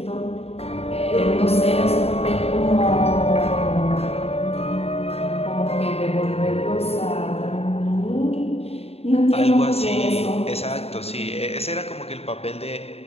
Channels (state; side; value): late; right; 0.29 ms